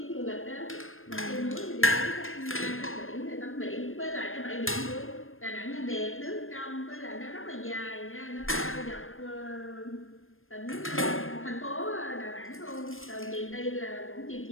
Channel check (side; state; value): right; late; 0.60 ms